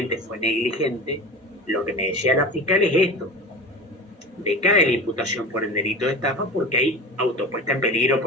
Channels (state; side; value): normal; both; correlation 0.31